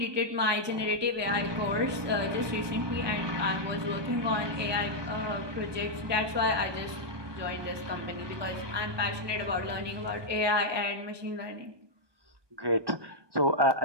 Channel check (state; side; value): late; left; 1.2 ms